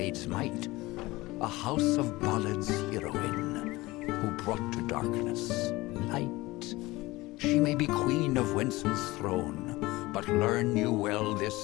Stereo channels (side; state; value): right; quieter; 20.3 dB